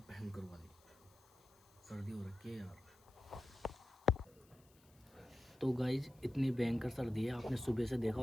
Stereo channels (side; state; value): left; noise; hiss, 29 dB below the sound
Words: भयंकर वाली, सर्दी हो रखी है यार। तो गाइज इतनी भयंकर सर्दी है, आपने सुबह से देखा